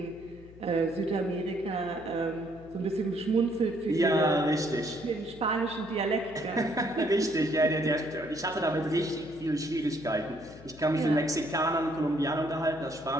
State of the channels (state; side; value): noise; left; hum, 20 dB below the sound